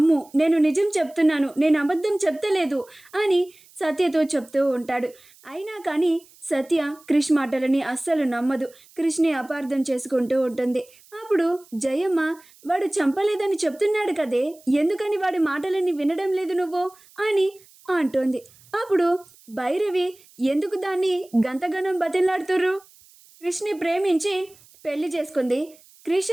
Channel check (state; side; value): noise; right; hiss, 27 dB below the sound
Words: నేను నిజం చెప్తున్నాను, నేను అబద్ధం చెప్తలేదు అని సత్యతో చెప్తూ ఉంటాడు. అయినా కానీ సత్య క్రిష్ మాటలని అస్సలు నమ్మదు. క్రిష్ని అపార్థం చేసుకుంటూ ఉంటుంది. అప్పుడు జయమ్మ, వాడు చంపలేదని చెప్తున్నాడు కదే, ఎందుకని వాడి మాటలని వినడం లేదు నువ్వు అని అంటుంది. అప్పుడు భైరవి, ఎందుకు దాన్ని గంతగనం బతిలాడుతుర్రు? క్రిష్ని ప్రేమించి పెళ్లి చేసుకుంది, క్రిష్